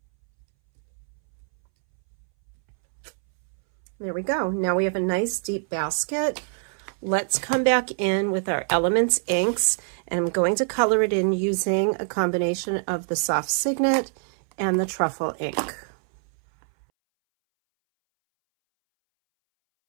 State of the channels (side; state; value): left; silent; 62 dB below the other